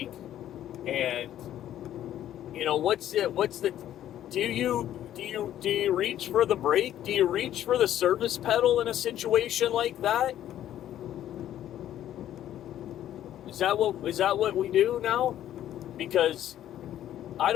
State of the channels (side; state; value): right; quieter; 11.8 dB